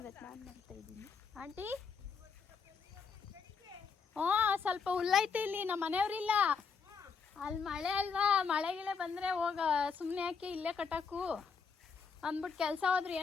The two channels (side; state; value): right; quieter; 5.6 dB